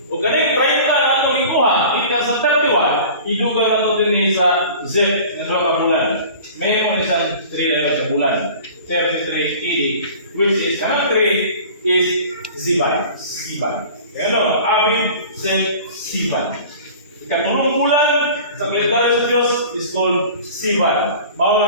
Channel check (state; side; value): inverted; both; correlation -0.42